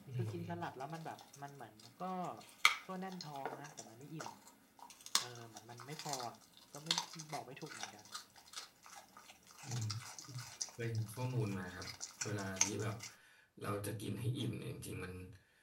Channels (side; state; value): both; identical; correlation 1.00